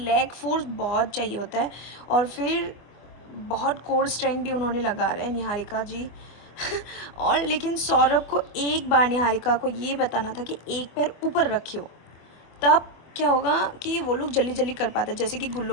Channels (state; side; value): late; right; 24 ms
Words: फोर्स बहुत चाहिए होता है, और फिर बहुत कोर स्ट्रेंथ भी उन्होंने लगा रहा है निहारिका जी और लेकिन सौरभ को एक बार निहारिका को ये बताना था कि एक पैर ऊपर रखियो, तब क्या होगा कि वो लोग जल्दी कर पाते, जैसे कि